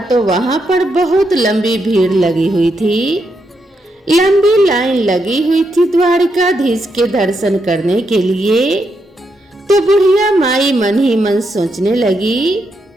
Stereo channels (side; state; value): both; normal; correlation 0.81